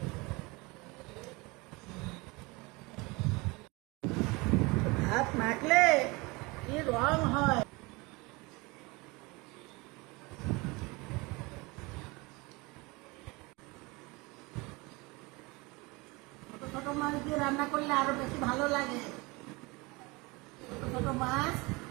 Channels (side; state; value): left; quieter; 25.2 dB